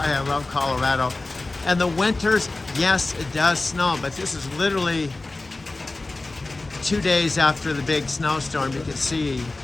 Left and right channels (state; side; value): quieter; right; 3.1 dB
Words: love Colorado. And the winters, yes, it does snow, but this is literally 2 days after the big snowstorm. You can see